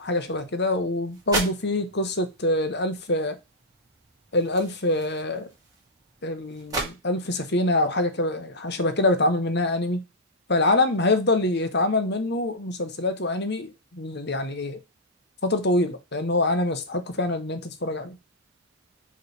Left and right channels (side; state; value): both; normal; correlation -0.11